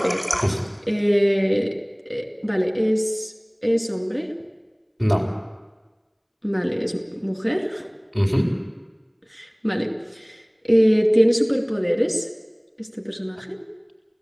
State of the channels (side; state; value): both; identical; correlation 1.00